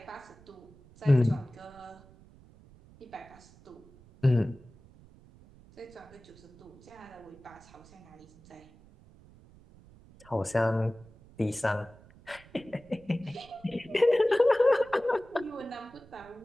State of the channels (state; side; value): noise; right; rumble, 24 dB below the sound